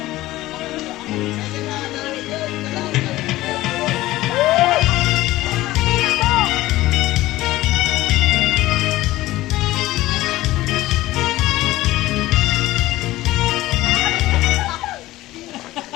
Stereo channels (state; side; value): quieter; right; 17.0 dB